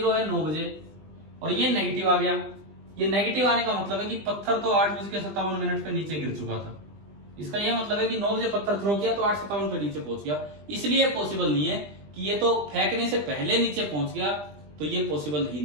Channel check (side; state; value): left; late; 20 ms